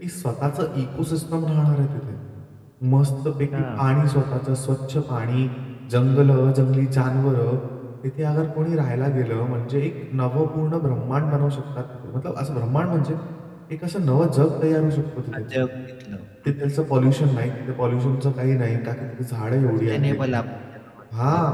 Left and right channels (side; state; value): both; identical; correlation 1.00